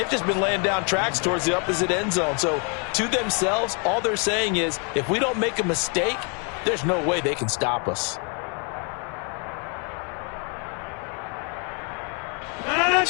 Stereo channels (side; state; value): right; quieter; 37.6 dB